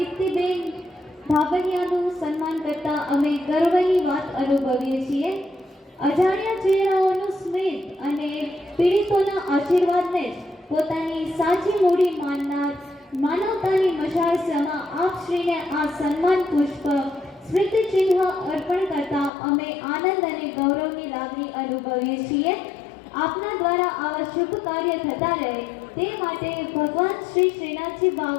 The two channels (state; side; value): drops out; right; at 19.3 s